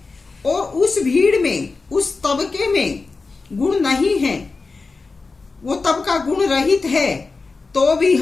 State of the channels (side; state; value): right; quieter; 4.1 dB